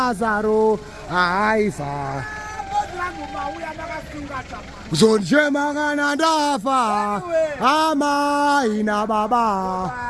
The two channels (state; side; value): identical; both; correlation 1.00